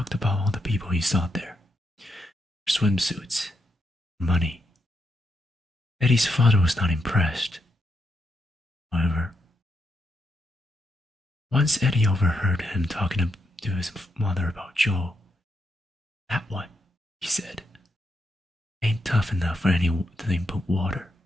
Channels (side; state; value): both; normal; correlation 0.81